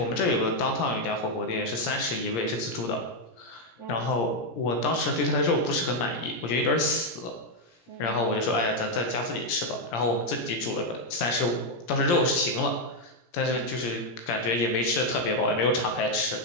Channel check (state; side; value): late; right; 17 ms